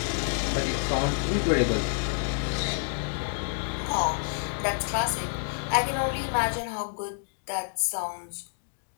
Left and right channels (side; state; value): right; silent; digital silence